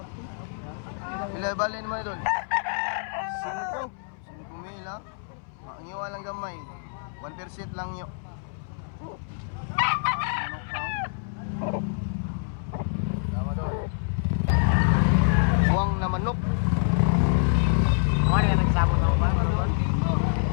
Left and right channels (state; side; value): silent; right; 61 dB below the other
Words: Ilay-balin naman Idol. 5 mil ha. Ang iwa lang gamay. 1% lang yun. Tama doon. Iwang na manok. Ano yan nagsabong ako ba?